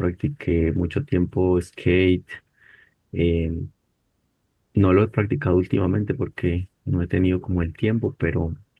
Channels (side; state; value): both; identical; correlation 1.00